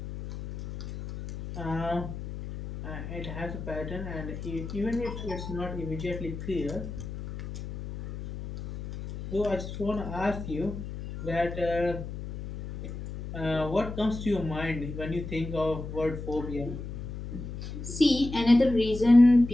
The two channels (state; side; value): noise; left; hum, 8 dB below the sound